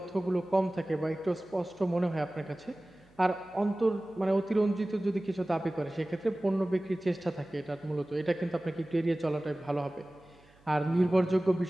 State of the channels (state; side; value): noise; right; hum, 29 dB below the sound